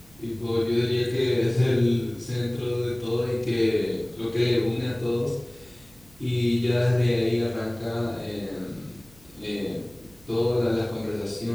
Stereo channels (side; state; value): right; noise; hum, 26 dB below the sound